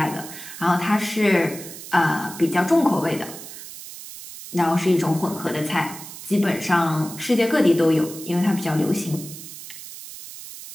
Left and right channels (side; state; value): right; noise; hiss, 13 dB below the sound